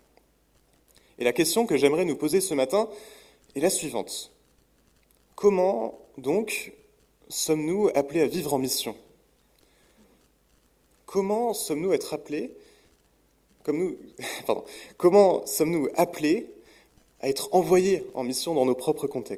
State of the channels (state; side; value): identical; both; correlation 1.00